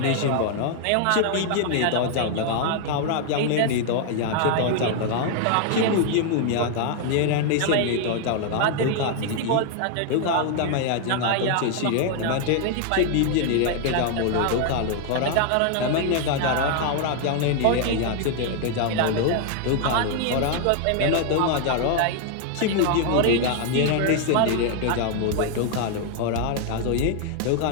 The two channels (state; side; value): different; both; correlation 0.00